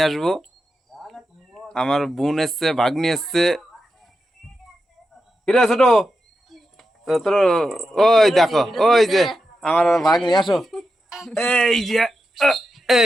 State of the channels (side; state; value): both; normal; correlation 0.89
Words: আসবো। আমার বোন এসছে, ভাগ্নি এসছে। কিরে ছোট, তোর ওই দেখো, ওই যে আমার ভাগ্নি, আসো। এই যে